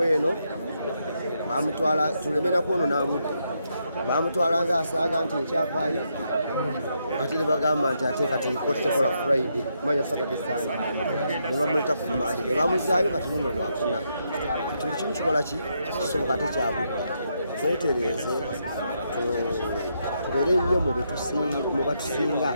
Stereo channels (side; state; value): both; inverted; correlation -0.79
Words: eno bamutwala tuleme nakwonona budde bamutwala nga asaaga nti ekyavaayo ate ne bagamba nti ate kati kooti tekola Friday manya Saturday Sunday ne bamuleta ku Monday ne bamuzaayo kati luno lwakuna kati buli kimu kikola ki kisoboka ate kyabudde twetereeze tubeere nnyo mu batusinga